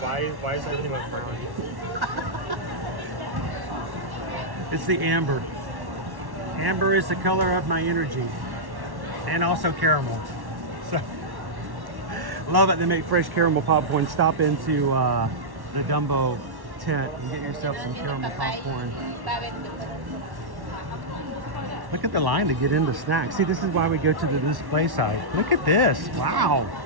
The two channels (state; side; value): late; left; 1.1 ms